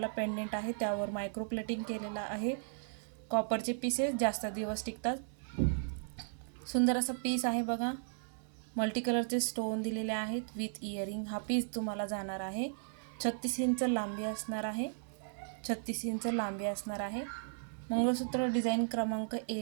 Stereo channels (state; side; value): silent; left; digital silence